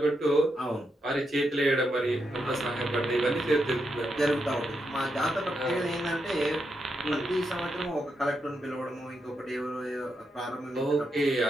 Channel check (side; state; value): both; normal; correlation 0.83